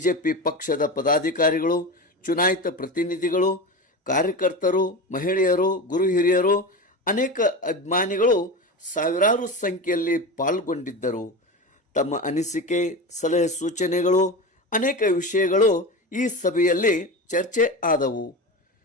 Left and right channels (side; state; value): both; normal; correlation 0.24